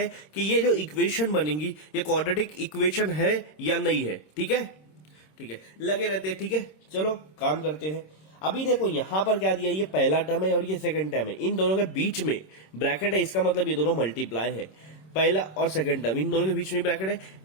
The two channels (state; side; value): late; right; 26 ms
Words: कि ये जो इक्वेशन बनेगी ये क्वाड्रेटिक इक्वेशन है या नहीं है। ठीक है, ठीक है, लगे रहते हैं। ठीक है, चलो काम करते हैं। अभी देखो यहां पर क्या दिया, ये पहला टर्म है और ये सेकंड टर्म है। इन दोनों के बीच में ब्रैकेट है, इसका मतलब ये दोनों मल्टीप्लाई है। पहला और सेकंड टर्म इन दोनों के बीच में ब्रैकेट है,